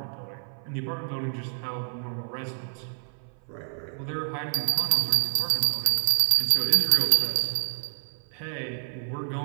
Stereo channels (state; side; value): silent; left; 57 dB below the other